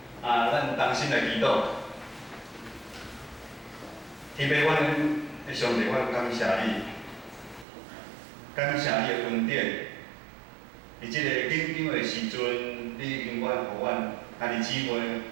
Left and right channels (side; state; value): left; drops out; at 7.7 s